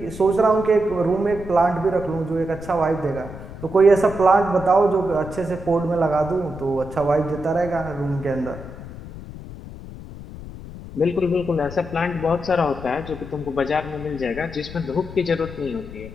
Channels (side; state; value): left; noise; rumble, 13 dB below the sound